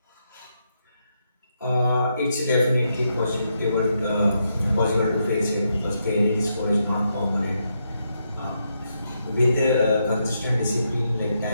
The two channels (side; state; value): both; inverted; correlation -0.80